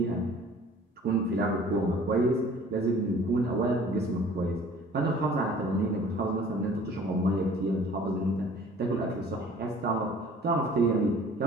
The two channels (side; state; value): both; normal; correlation 0.50